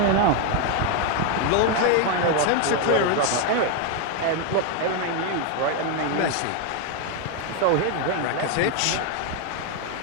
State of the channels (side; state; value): both; different; correlation 0.01